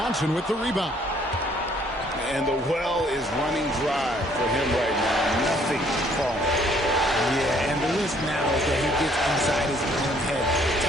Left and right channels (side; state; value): both; normal; correlation 0.63